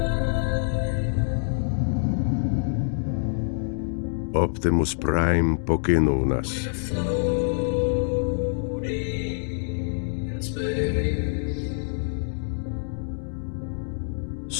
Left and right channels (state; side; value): silent; right; 61 dB below the other